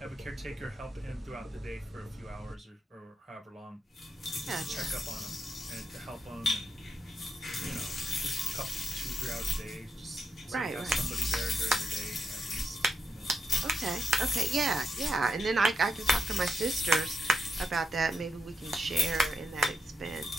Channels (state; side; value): normal; both; correlation 0.83